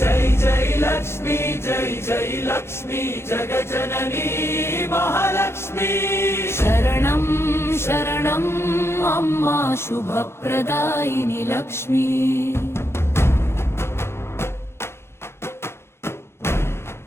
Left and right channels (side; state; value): right; late; 0.12 ms